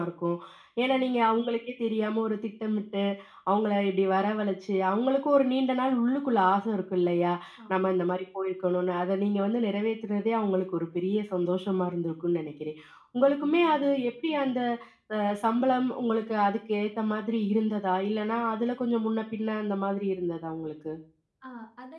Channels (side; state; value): both; identical; correlation 1.00